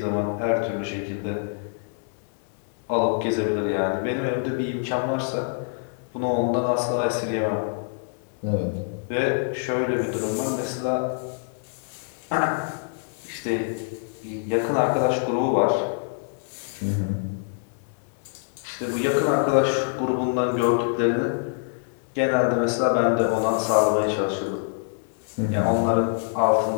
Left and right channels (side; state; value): right; silent; 61 dB below the other